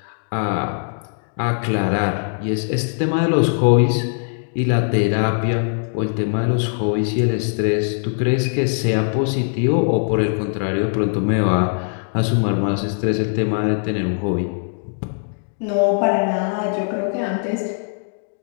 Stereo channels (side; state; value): right; silent; digital silence